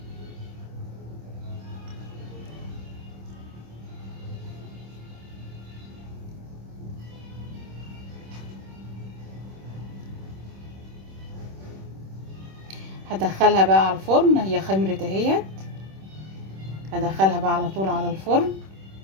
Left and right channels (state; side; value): late; left; 26 ms